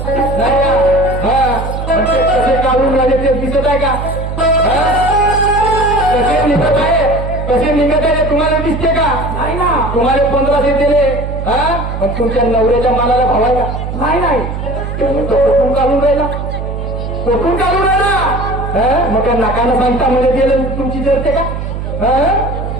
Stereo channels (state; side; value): noise; right; hum, 5 dB below the sound